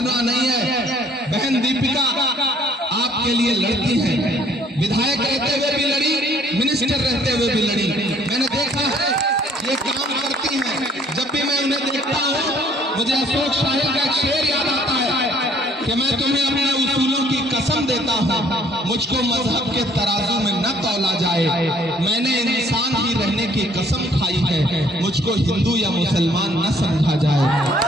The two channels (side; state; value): both; normal; correlation 0.61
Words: नहीं है। बहन दीपिका आपके लिए लड़ती है, विधायक रहते हुए भी लड़ी, मिनिस्टर रहते हुए भी लड़ी। मैंने देखा है ये काम करती हैं। जब भी मैं उन्हें देखता हूँ मुझे अशोक शाही का एक शेर याद आता है कि मैं तुम्हें अपने उसूलों की कसम देता हूँ, मुझको मजहब के तराजू में न तौला जाए। मैंने इंसान ही रहने की कसम खाई है, मुझको हिंदू या मुसलमान न समझा जाए।